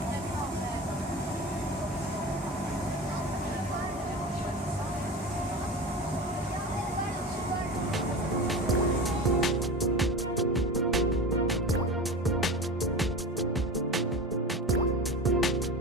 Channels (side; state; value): both; normal; correlation 0.30